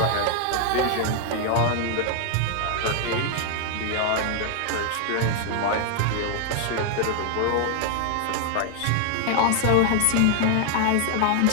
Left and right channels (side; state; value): both; different; correlation 0.00